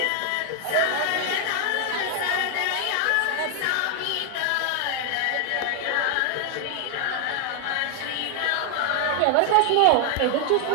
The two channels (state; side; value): different; both; correlation 0.00